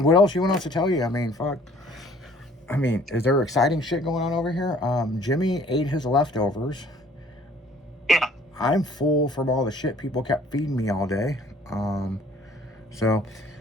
what else you want us to tell you? I mean, fuck. I mean, is there exciting shit going on over here? Jimmy ate his leftovers. Yeah. I'm full from all the shit people kept feeding me all day.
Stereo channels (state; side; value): normal; both; correlation 0.55